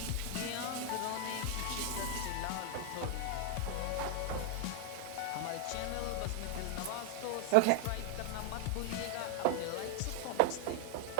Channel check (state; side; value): different; both; correlation 0.00